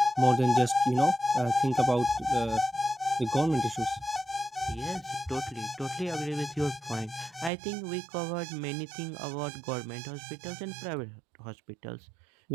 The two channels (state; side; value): drops out; left; at 7.5 s